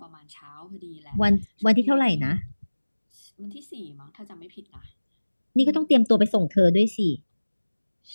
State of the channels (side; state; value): both; inverted; correlation -1.00